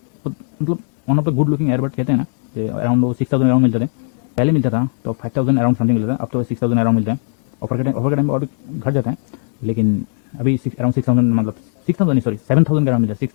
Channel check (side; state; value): right; silent; 62 dB below the other